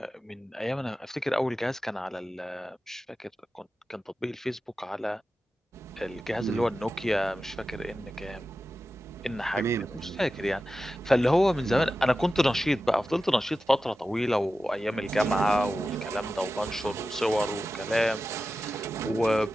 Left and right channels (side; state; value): both; normal; correlation 0.93